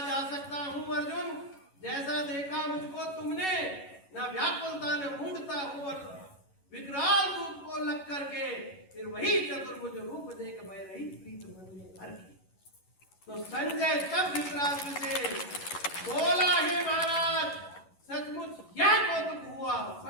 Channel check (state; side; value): late; right; 11 ms